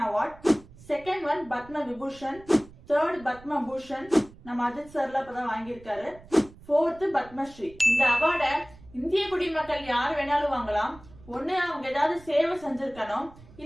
award, second one Padma Vibhushan, third Padma Bhushan நம்ம அஜித் சார்ல இப்பதான் வாங்கியிருக்காரு, ஃபோர்த் பத்மஸ்ரீ. இந்த அவார்டை இந்திய குடிமக்கள் யார் வேணாலும் வாங்கலாம். ஒண்ணு அவங்க ஏதாவது சேவை செஞ்சிருக்கணும்,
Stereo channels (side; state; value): right; noise; rumble, 22 dB below the sound